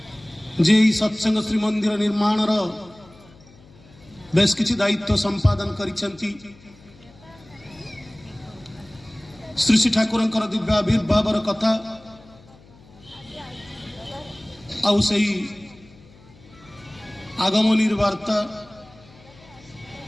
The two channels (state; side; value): noise; left; hum, 24 dB below the sound